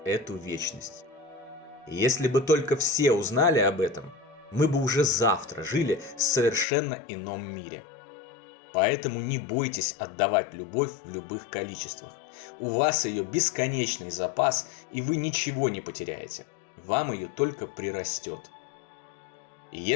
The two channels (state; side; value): drops out; right; at 6.7 s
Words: эту вечность. И если бы только все узнали об этом, мы бы уже завтра жили в совершенно ином мире. Поэтому не бойтесь отдавать любовь в любых количествах. У вас ее бесконечный запас, и вы ничего не потеряете. Вам ее только прирастет. И